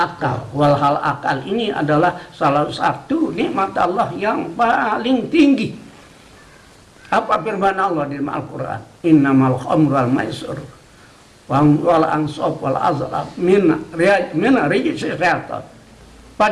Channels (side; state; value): both; identical; correlation 1.00